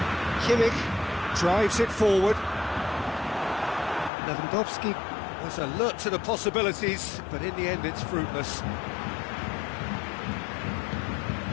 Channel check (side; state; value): right; drops out; at 4.1 s